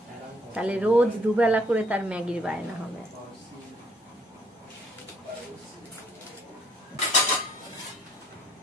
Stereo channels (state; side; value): normal; both; correlation 0.65